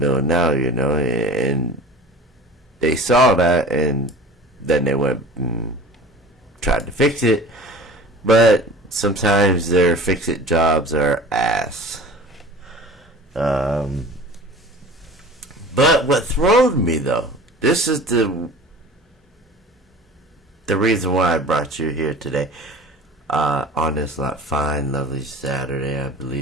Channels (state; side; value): normal; both; correlation 0.40